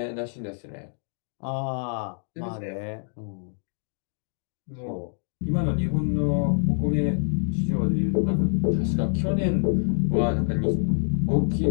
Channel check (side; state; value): right; silent; 61 dB below the other